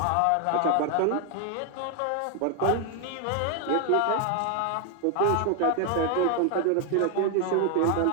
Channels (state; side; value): different; both; correlation 0.00